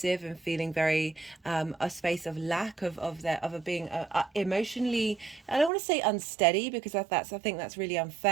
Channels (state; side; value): drops out; left; at 5.7 s